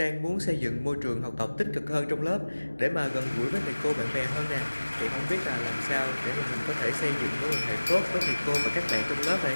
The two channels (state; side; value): inverted; both; correlation -1.00